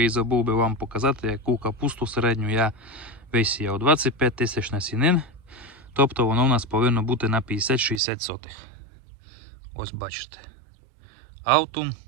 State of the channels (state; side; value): drops out; left; at 8.0 s